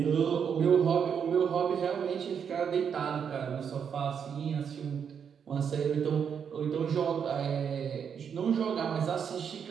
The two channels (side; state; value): left; quieter; 7.3 dB